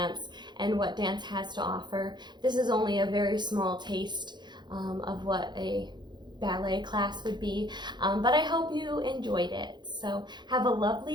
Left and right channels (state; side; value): late; left; 0.21 ms